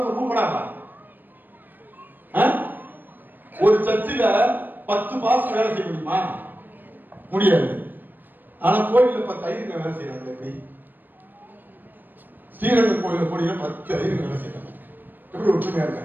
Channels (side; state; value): left; late; 0.091 ms